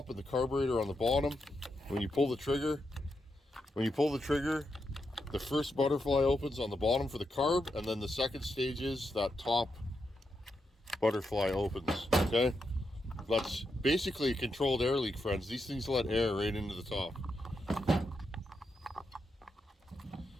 and the carburetor on the bottom. When you pull the trigger, the first butterfly opens on the bottom for the carb, and then the second stage is that top butterfly opens. Okay, that's basically a controlled air leak, friends. These things let air right into the top.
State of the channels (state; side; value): normal; both; correlation 0.84